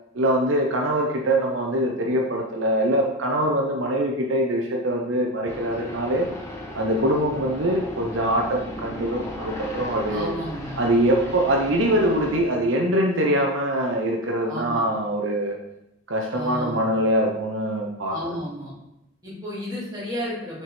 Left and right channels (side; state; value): both; normal; correlation 0.16